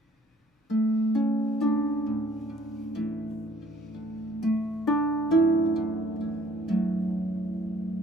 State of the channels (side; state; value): both; normal; correlation 0.58